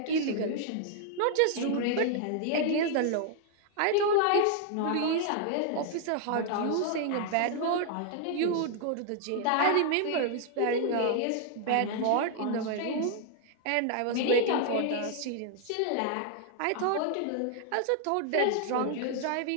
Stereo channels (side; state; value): both; different; correlation 0.00